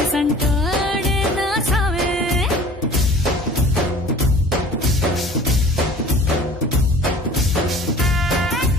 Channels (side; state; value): both; normal; correlation 0.46